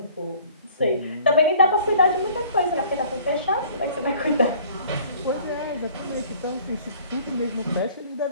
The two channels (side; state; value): both; inverted; correlation -0.53